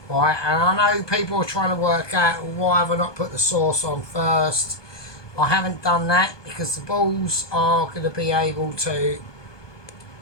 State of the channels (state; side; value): late; right; 1.2 ms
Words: Right, and I know people are trying to work out why have I not put the sauce on first. I haven't done that because the balls are going to be able to